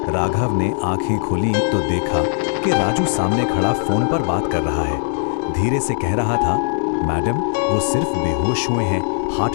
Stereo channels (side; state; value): right; silent; digital silence